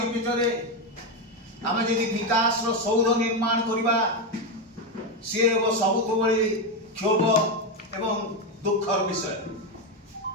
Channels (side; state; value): both; normal; correlation 0.09